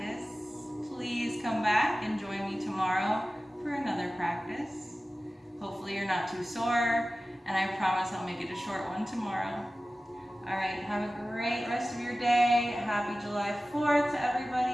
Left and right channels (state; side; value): normal; both; correlation 0.96